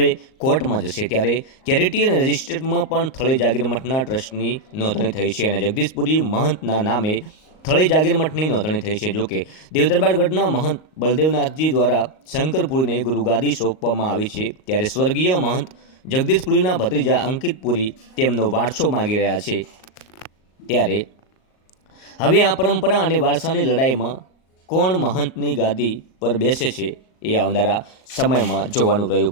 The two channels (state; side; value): late; right; 38 ms